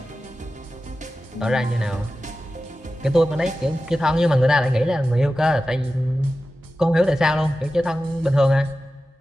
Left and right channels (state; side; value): normal; both; correlation 0.94